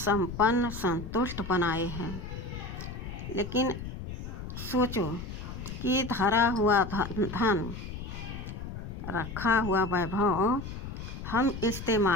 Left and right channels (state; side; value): noise; left; rumble, 8 dB below the sound